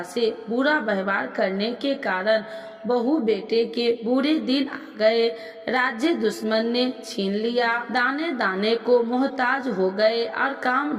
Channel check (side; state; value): both; identical; correlation 1.00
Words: से बुरा व्यवहार करने के कारण बहू बेटे के बुरे दिन आ गए। राज्य दुश्मन ने छीन लिया। दाने दाने को मोहताज हो गए और काम